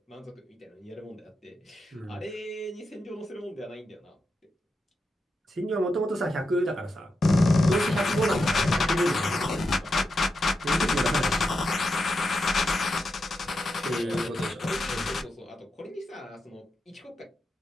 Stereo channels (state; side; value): normal; both; correlation 0.87